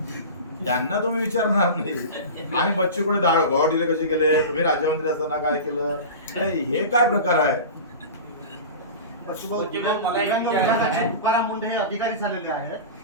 त्यांना तुम्ही विचारणार नाही. आणि बच्चूकडे गोवा दिले कसे गेले, तुम्ही राज्यमंत्री असताना काय केलं, हे काय प्रकार आहे? दिव्यांग विभागाचे तुकाराम मुंडे हे अधिकारी झालेले आहेत.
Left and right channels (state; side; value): inverted; both; correlation -0.30